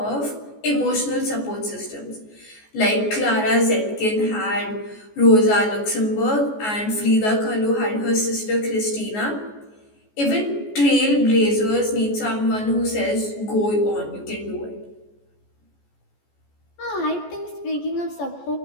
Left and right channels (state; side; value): late; right; 14 ms